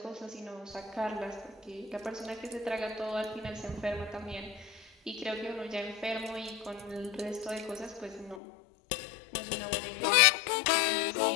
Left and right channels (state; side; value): drops out; right; at 8.4 s